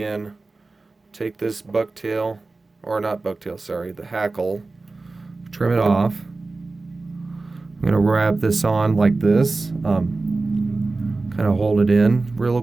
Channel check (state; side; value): quieter; left; 3.5 dB